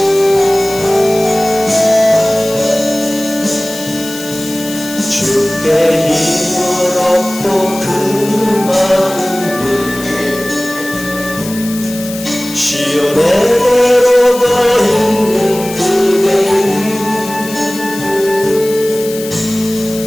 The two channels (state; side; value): noise; left; hiss, 12 dB below the sound